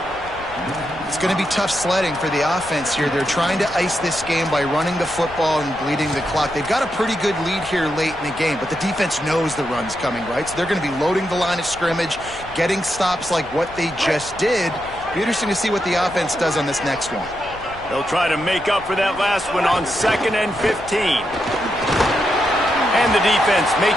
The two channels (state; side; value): noise; left; rumble, 19 dB below the sound